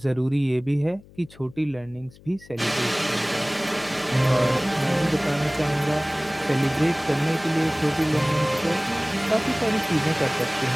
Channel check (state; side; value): noise; left; hum, 23 dB below the sound